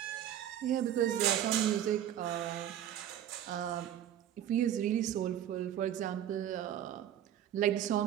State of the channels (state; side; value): quieter; left; 10.8 dB